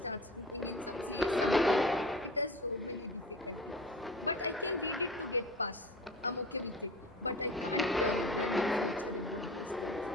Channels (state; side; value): normal; both; correlation 0.36